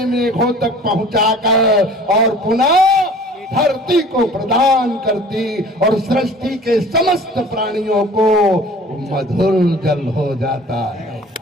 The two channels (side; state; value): both; normal; correlation 0.46